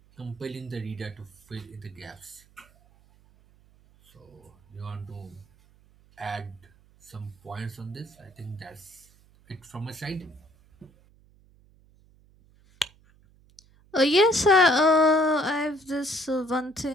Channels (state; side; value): noise; right; hum, 29 dB below the sound